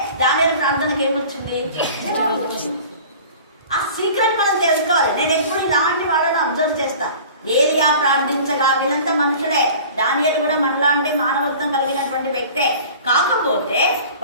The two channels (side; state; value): both; inverted; correlation -0.42